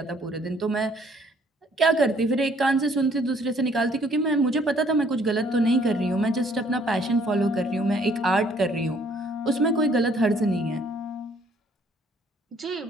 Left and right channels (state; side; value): normal; both; correlation 0.62